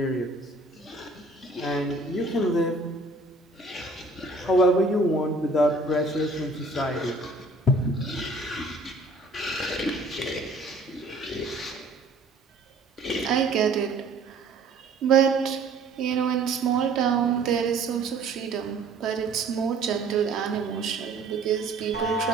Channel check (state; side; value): quieter; left; 3.2 dB